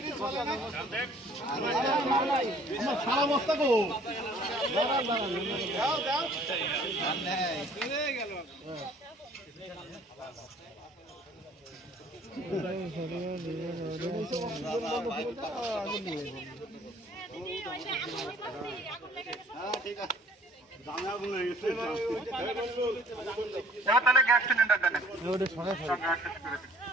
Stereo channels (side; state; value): both; normal; correlation 0.55